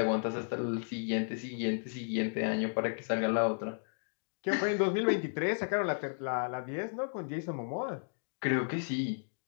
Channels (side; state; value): right; silent; digital silence